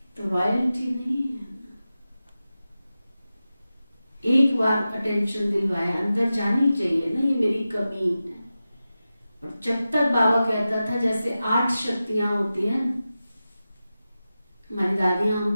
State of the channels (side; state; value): both; inverted; correlation -0.93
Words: तो रॉयल्टी नहीं है। एक बार अटेंशन दिलवाया, अंदर जानी चाहिए ना ये मेरी कमी है। और जब तक बाबा कहता था जैसे 8 शक्तियां होती हैं, हमारी दादियां